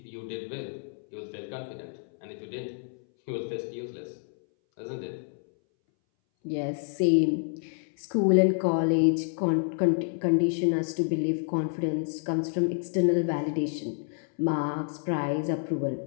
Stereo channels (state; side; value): silent; right; 59 dB below the other